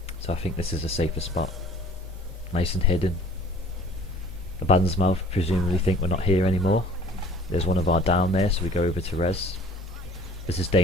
So I think this is a safer spot. Nice and hidden. Abaddon's Mouth presumably think we're not here anymore. There's one of our down there, so we go over to res. This is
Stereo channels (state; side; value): normal; both; correlation 0.51